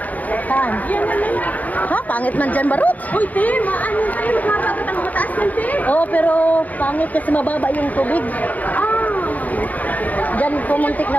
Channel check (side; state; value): right; late; 0.076 ms